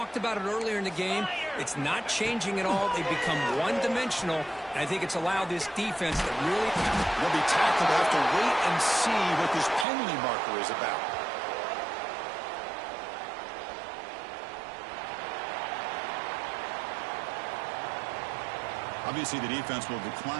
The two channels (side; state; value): left; drops out; at 9.9 s